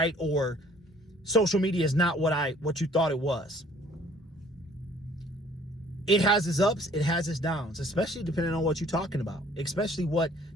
Or social media is not what you thought it was. It has its ups, it has its downs, especially depending on what you're talking about,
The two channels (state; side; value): normal; both; correlation 0.56